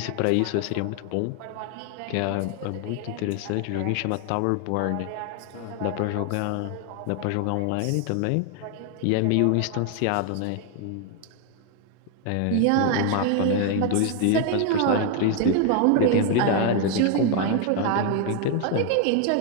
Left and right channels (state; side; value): different; both; correlation 0.01